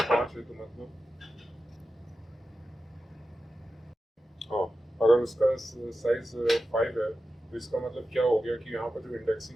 5 है तो मतलब, हाँ, अगर उसका साइज 5 है तो इसका मतलब क्या हो गया कि यहाँ पर जो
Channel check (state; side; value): normal; both; correlation 0.92